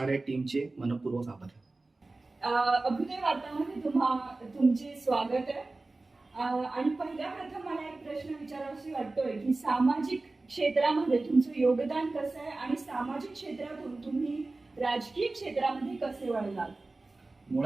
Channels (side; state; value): left; quieter; 3.2 dB